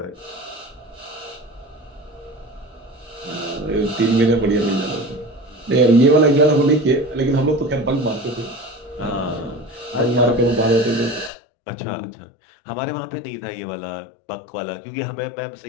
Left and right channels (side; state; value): right; drops out; at 11.3 s